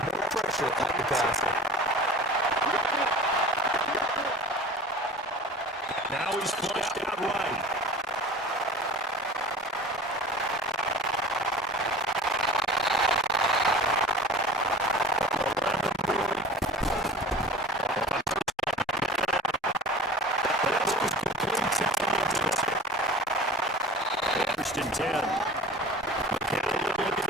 pressure at the passer. Now he's flushed out right. First and 10. McCown looking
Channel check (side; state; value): both; normal; correlation 0.40